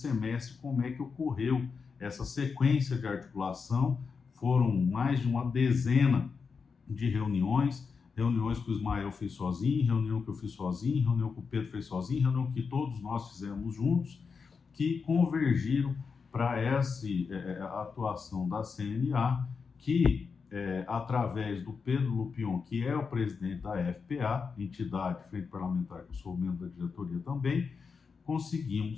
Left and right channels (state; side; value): quieter; right; 5.3 dB